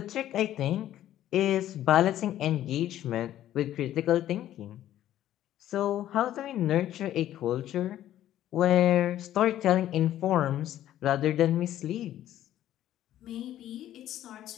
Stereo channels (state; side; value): quieter; right; 12.5 dB